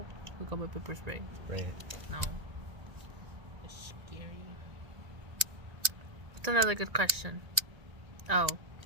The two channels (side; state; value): left; late; 1.8 ms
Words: I got my pepper spray. Right. No. It's scary. What's another good question? Oh.